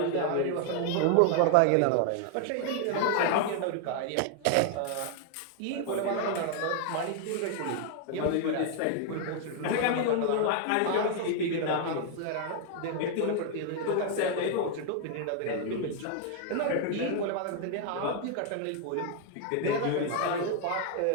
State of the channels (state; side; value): different; both; correlation 0.00